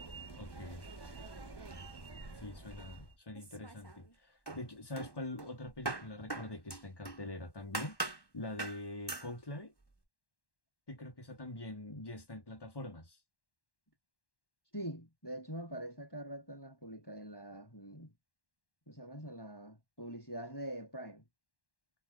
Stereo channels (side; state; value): right; late; 1.1 ms